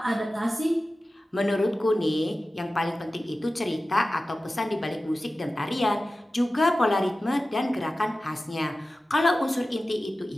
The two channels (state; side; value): normal; both; correlation 0.95